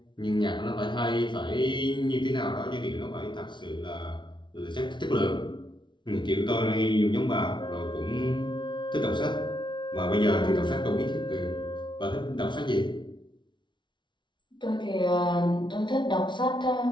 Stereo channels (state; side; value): late; right; 0.23 ms